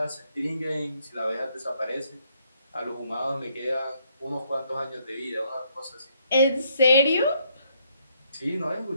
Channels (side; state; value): both; inverted; correlation -0.71